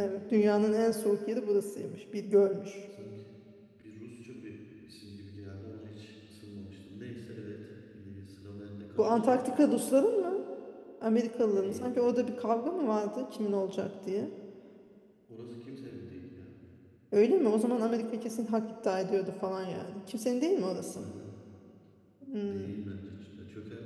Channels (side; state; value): both; identical; correlation 1.00